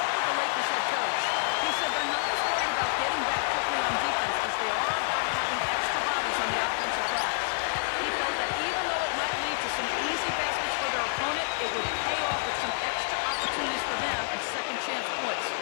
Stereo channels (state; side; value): silent; right; digital silence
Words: with the Lakers head coach. He said they're not as worried about getting back quickly on defense as they are about having extra bodies on the offensive glass. He felt that even though it might lead to some easy baskets for their opponent, it would pay off with some extra opportunities for them and second chance points.